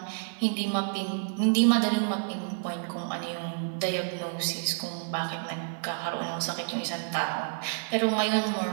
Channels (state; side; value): silent; left; 58 dB below the other